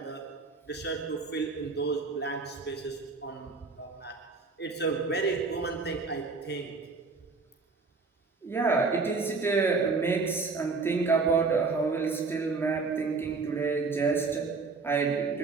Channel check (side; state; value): left; quieter; 4.4 dB